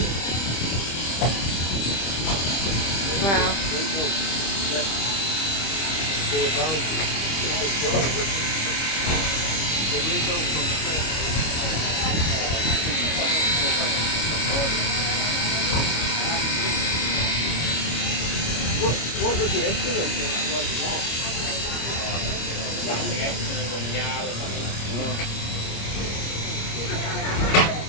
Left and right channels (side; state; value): right; late; 25 ms